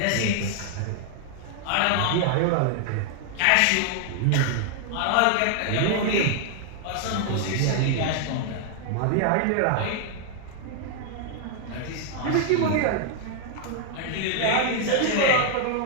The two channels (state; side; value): different; both; correlation 0.00